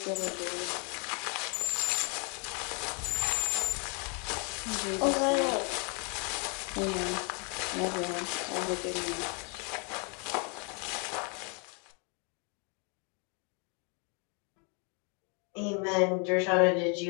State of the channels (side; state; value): right; quieter; 35.6 dB